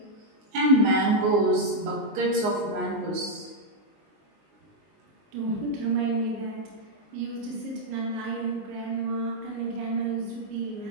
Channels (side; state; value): left; late; 19 ms